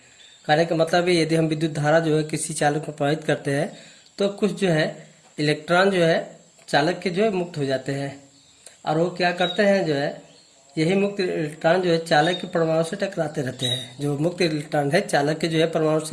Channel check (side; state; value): both; identical; correlation 1.00